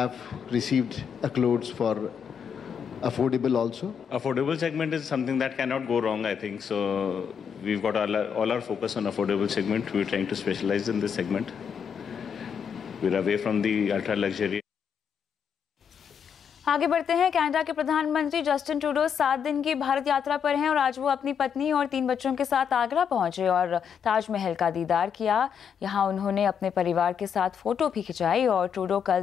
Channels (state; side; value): quieter; right; 7.4 dB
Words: received accolades for affordable also. Affordable segment is something that cannot go wrong, I think. So we've got all our focus on affordable segment. We're trying to specialize in this segment. We're away from the ultra luxury. आगे बढ़ते हैं। Canada के प्रधानमंत्री Justin Trudeau 7 दिन की भारत यात्रा पर हैं और आज वो अपनी पत्नी और 3 बच्चों के साथ आगरा पहुंचे और ताजमहल का दीदार किया। यहां उन्होंने अपने परिवार के साथ फोटो भी खिंचाई और ट्रूडो